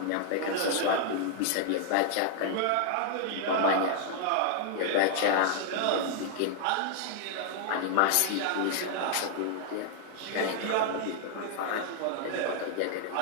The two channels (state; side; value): different; both; correlation 0.00